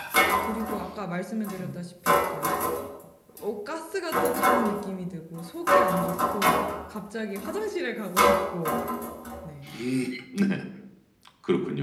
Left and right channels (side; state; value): both; identical; correlation 1.00